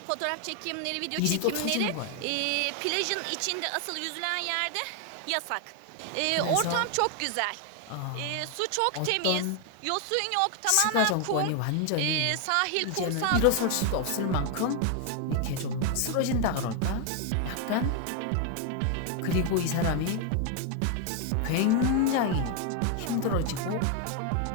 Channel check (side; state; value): both; different; correlation 0.01